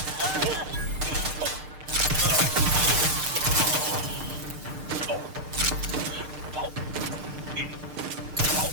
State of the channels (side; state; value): left; late; 6.6 ms